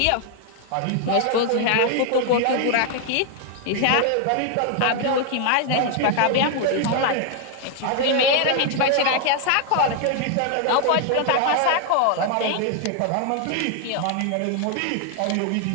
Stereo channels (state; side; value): different; both; correlation 0.00